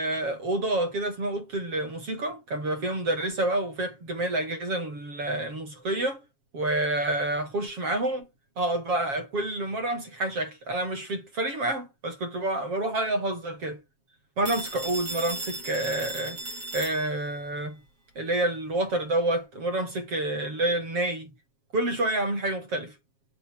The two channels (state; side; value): late; left; 7.3 ms